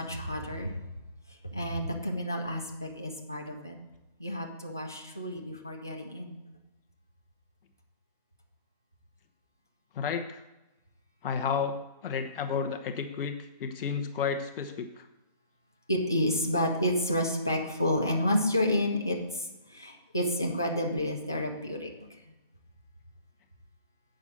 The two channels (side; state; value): both; inverted; correlation -0.53